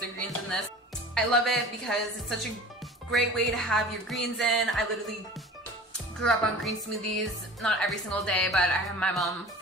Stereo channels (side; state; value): both; normal; correlation 0.40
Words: the greens in this. I love it because it's such a great way to have your greens in. I literally grew up on green smoothies, not every single day, but my mom